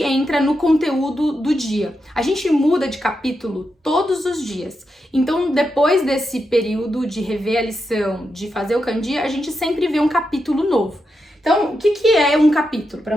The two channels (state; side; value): normal; both; correlation 0.86